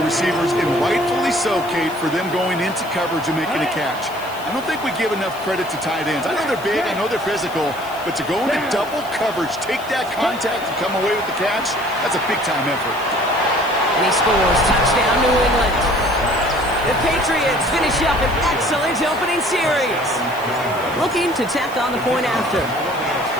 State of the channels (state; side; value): noise; left; hiss, 19 dB below the sound